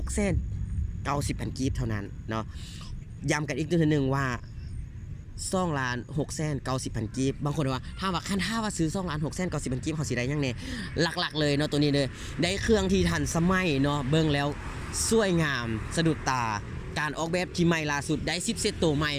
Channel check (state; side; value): identical; both; correlation 1.00